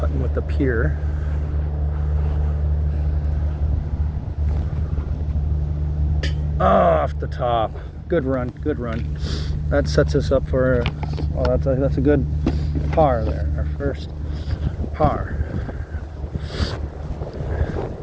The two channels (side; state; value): both; identical; correlation 1.00